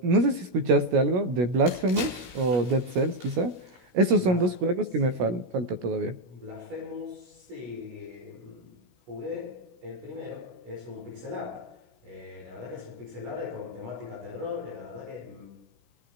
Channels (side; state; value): left; late; 16 ms